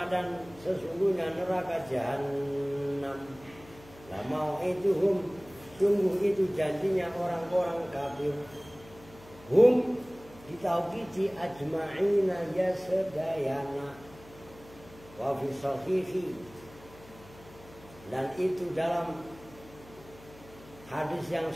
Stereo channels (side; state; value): left; noise; hum, 21 dB below the sound